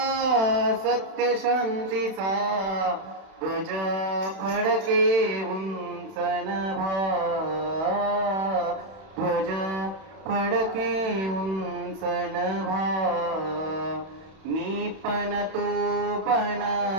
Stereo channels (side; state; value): left; late; 31 ms